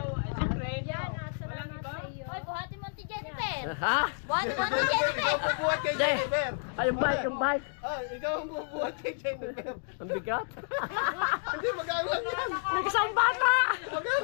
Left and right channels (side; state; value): right; silent; digital silence